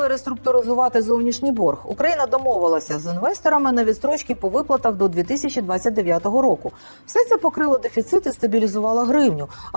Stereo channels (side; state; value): both; inverted; correlation -1.00